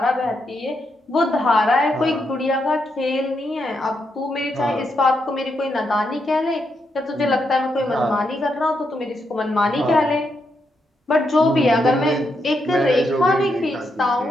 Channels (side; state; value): both; normal; correlation 0.81